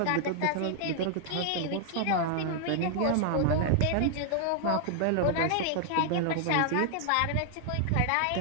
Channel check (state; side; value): different; both; correlation 0.00